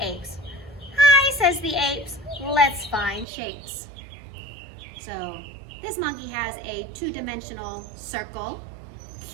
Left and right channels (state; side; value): drops out; left; at 3.2 s